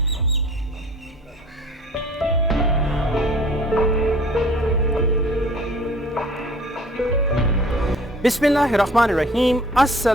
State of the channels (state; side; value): normal; both; correlation 0.50